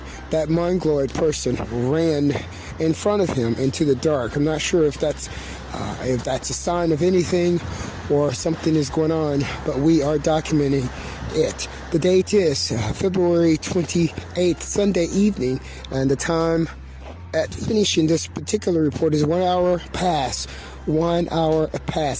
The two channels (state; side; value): identical; both; correlation 1.00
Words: that Mongoloid person ran in front of him into the dark. I'm not sure if that's a sign of anything or something is going on, but we are documenting it. The date is February 28th, Sunday evening, and the time at finishing this particular report is 1 hour past. 1 hour